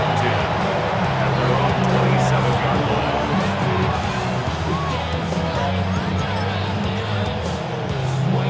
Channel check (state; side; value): identical; both; correlation 1.00